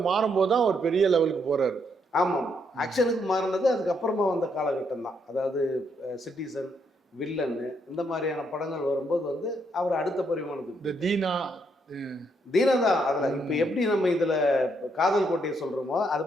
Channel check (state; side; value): normal; both; correlation 0.75